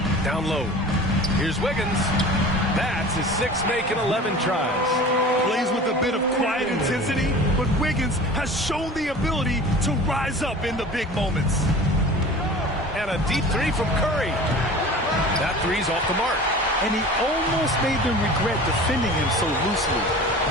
Down low. Here's Wiggins. That's his 6th make in 11 tries. Plays with a bit of quiet intensity, but Wiggins has shown the ability to rise up in the big moments. And a deep 3 from Curry. That 3's off the mark. And he almost made them regret defending him so loosely.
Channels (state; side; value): normal; both; correlation 0.39